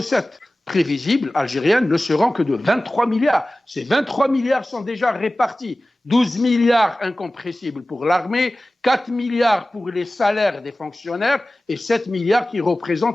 prévisibles algériennes ne seront que de 23 milliards. Ces 23 milliards sont déjà répartis. 12 milliards incompressibles pour l'armée, 4 milliards pour les salaires des fonctionnaires et 7 milliards qui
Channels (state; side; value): normal; both; correlation 0.97